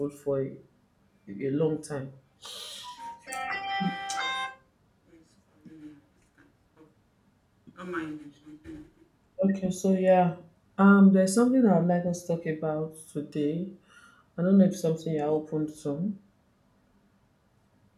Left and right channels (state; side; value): identical; both; correlation 1.00